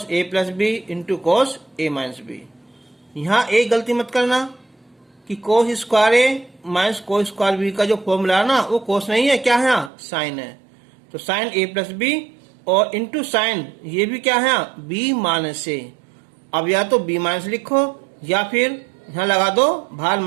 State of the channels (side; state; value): left; drops out; at 9.9 s